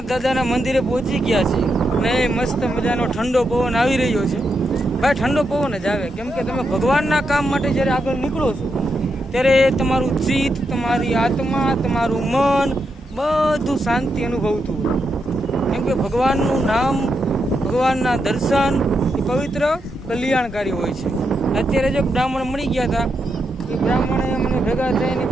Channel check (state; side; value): normal; both; correlation 0.84